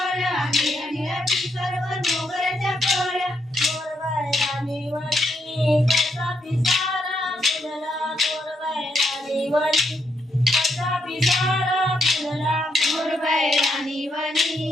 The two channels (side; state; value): both; normal; correlation 0.78